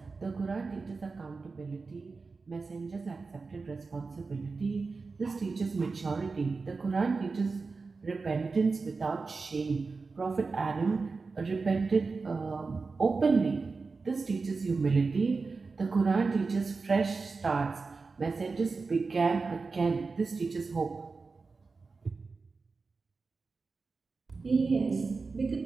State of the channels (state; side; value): quieter; left; 4.3 dB